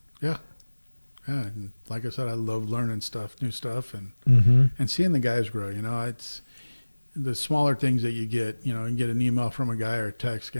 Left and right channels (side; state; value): both; inverted; correlation -1.00